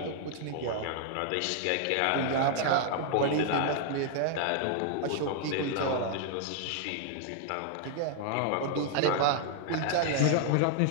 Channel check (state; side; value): different; both; correlation 0.00